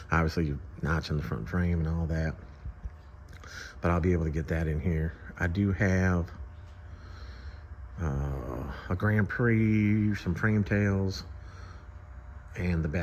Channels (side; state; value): both; identical; correlation 1.00